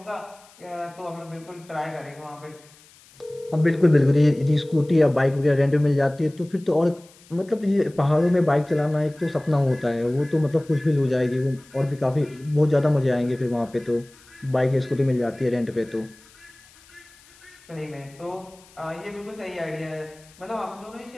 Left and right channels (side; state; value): left; noise; hiss, 26 dB below the sound